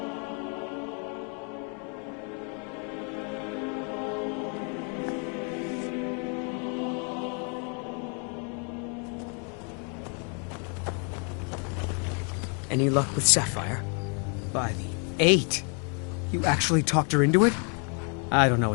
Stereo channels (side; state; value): right; quieter; 39.0 dB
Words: Any luck with Sapphire? By the 8. You actually talked her into it? I don't know